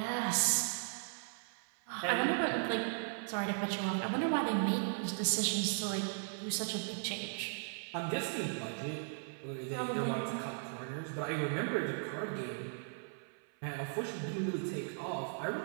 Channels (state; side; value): silent; left; 53 dB below the other